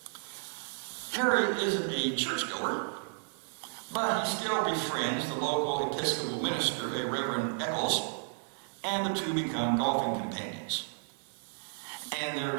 Harry isn't a churchgoer, but he still befriends the local Episcopal minister, a Reverend Eccles, and the two become golfing companions. And their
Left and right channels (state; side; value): silent; left; 55 dB below the other